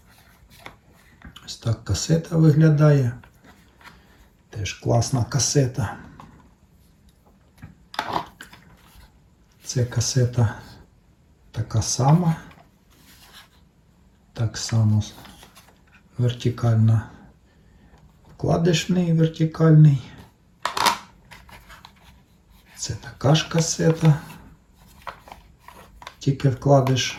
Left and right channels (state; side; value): identical; both; correlation 1.00